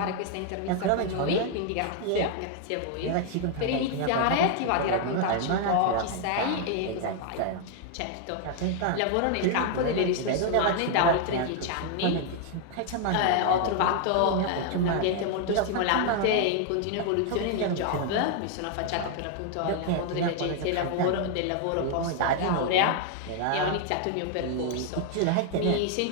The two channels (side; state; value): both; different; correlation 0.00